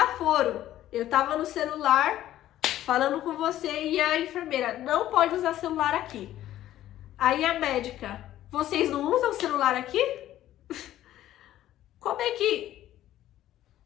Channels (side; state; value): right; quieter; 13.2 dB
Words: Eu tava no celular falando com você e a enfermeira, não pode usar celular aqui. Aí a médica, vocês não usam celular aqui? Como é que...